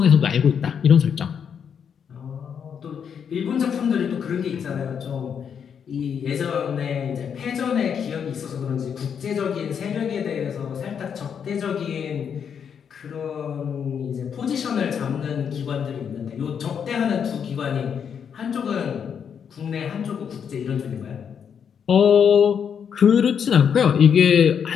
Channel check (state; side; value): quieter; right; 7.5 dB